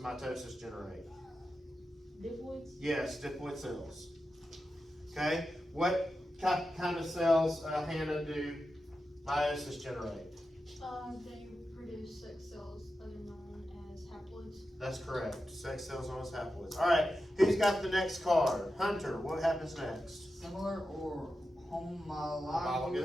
mitosis generate? Diploids. Yes, diploid cells. Okay. What kind of cells, Hannah, do meiosis generate? They produce sex cells that are known as haploids. That's correct. Sex cells known as haploids. All right. Who's got the next card? Hunter. What happens next? Similar or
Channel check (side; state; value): both; normal; correlation 0.90